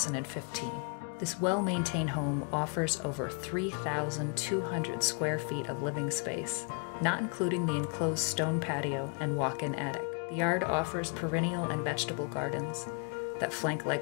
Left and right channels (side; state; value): right; quieter; 37.5 dB